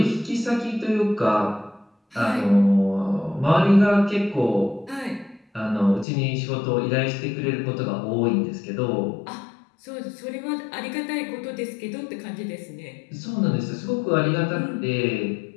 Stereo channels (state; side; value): drops out; right; at 6.1 s